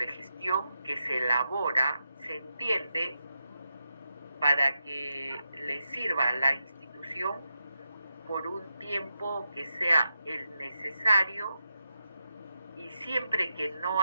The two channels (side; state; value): both; inverted; correlation -0.88